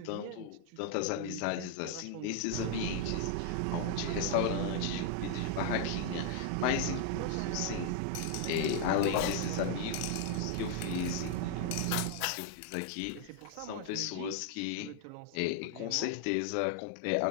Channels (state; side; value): different; both; correlation 0.00